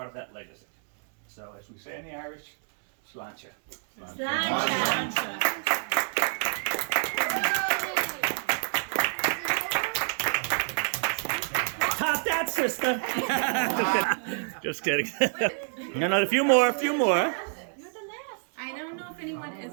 of that legacy. So as we say in the Irish, sláinte. Sláinte. Top that, sister. Just kidding. No, a few more. You're the last. I don't know if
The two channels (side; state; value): left; silent; 59 dB below the other